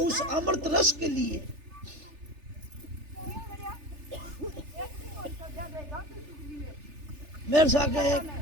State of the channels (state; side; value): late; left; 3.4 ms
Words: अमृत रस के लिए। मेरे साथ